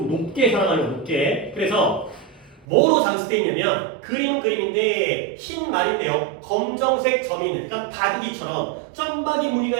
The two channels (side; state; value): left; drops out; at 2.7 s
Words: 높게 사랑하는 거야, 높게. 그래서 뭐로 장식되어 있냐면 그림은 그림인데 흰 말인데요. 검정색 점이 있는, 그러니까 바둑이처럼 점박이